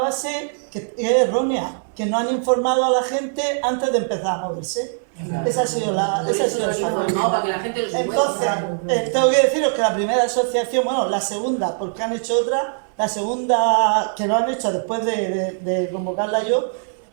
que es errónea, que no han informado a la gente antes de empezar a moverse. Esa ha sido la Informado para que la gente lo sepa. Entonces, tengo que deciros que la primera asociación, bueno, la segunda, porque han hecho otra, la segunda que lo han hecho después de convocarla yo,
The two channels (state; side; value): silent; left; 64 dB below the other